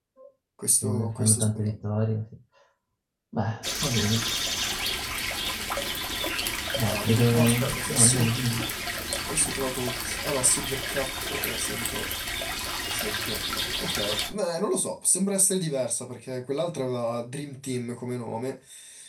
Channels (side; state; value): both; identical; correlation 1.00